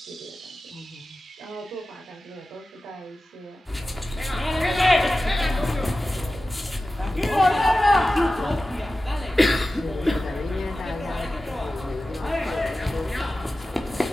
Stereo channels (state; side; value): normal; both; correlation 0.95